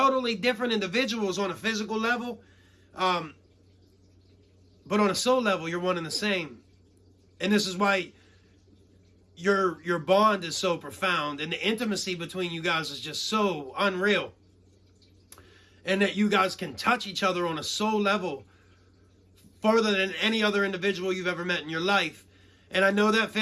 different individuals on a physical level, but on a soul level, you're one and the same. And this is why your bond is so profound, and the intimacy between you guys is just so unreal. And that you guys can touch each other on a soul level farther than any other individual you've ever met in your life. And I know that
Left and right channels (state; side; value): identical; both; correlation 1.00